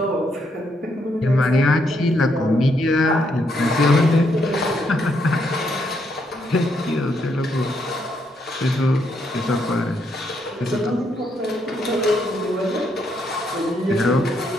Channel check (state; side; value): normal; both; correlation 0.76